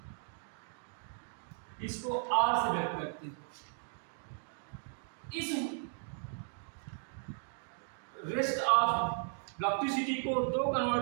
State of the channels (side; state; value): left; silent; 54 dB below the other